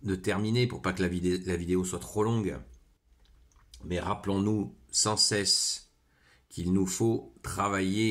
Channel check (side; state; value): both; identical; correlation 1.00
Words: terminer pour pas que la vidéo soit trop longue. Mais rappelons-nous sans cesse qu'il nous faut